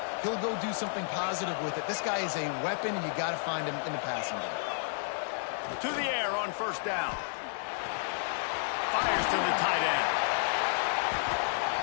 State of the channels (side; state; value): right; silent; digital silence